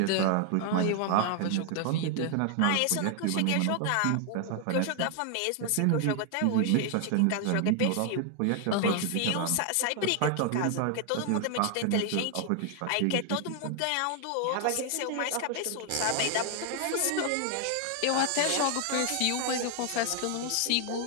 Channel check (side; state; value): both; different; correlation 0.00